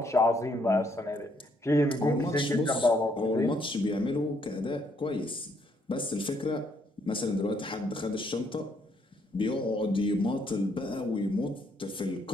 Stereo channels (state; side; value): normal; both; correlation 0.71